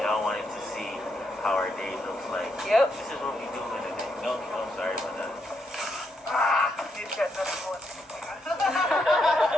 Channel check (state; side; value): normal; both; correlation 0.79